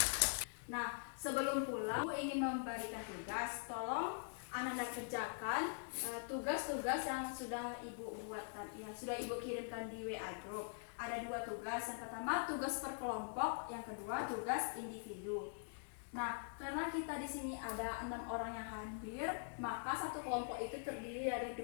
Nah, sebelum pulang, Ibu ingin memberikan tugas. Tolong Anda kerjakan tugas-tugas yang sudah Ibu buatkan, yang sudah Ibu kirimkan di WA Group. Ada 2 tugas. Yang pertama tugas per kelompok, yang kedua tugas individu. Nah, karena kita di sini ada 6 orang yang hadir, maka satu kelompok itu terdiri dari 2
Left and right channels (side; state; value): right; silent; digital silence